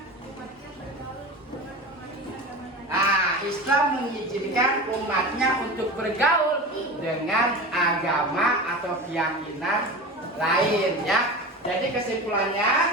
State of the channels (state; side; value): normal; both; correlation 0.30